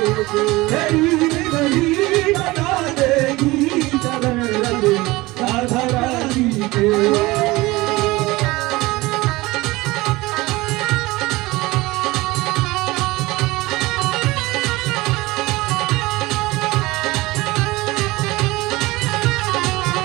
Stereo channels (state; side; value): quieter; left; 20.7 dB